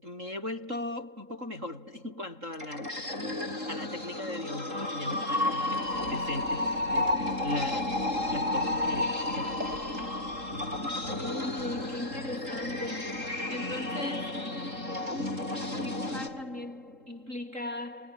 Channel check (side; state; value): left; late; 3.7 ms